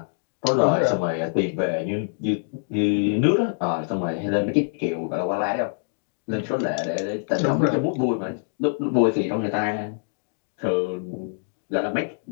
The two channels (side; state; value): right; silent; digital silence